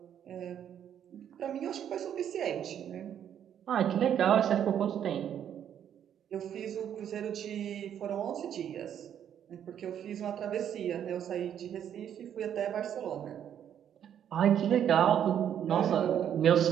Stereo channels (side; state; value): left; quieter; 9.5 dB